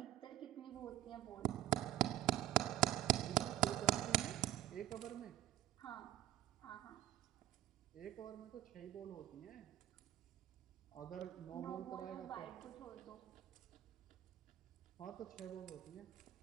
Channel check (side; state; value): left; quieter; 13.0 dB